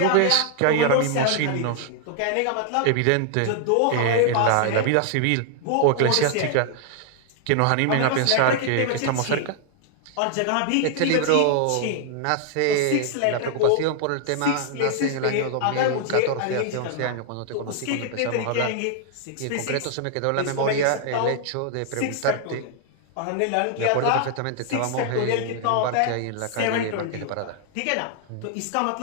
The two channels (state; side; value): different; both; correlation 0.00